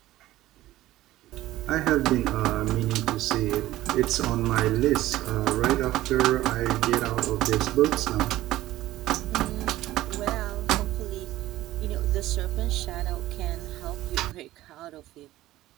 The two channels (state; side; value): quieter; left; 15.7 dB